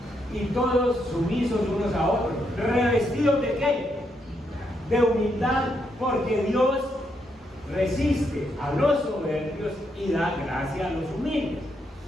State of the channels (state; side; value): normal; both; correlation 0.78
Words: y todos sumisos unos a otros, revestidos de ¿qué? De humildad, porque Dios resiste a los soberbios y da gracia a los humildes.